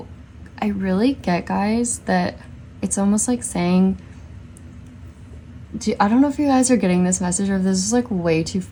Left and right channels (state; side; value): identical; both; correlation 1.00